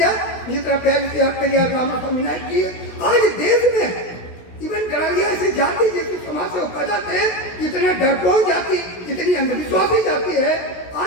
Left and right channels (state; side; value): late; right; 16 ms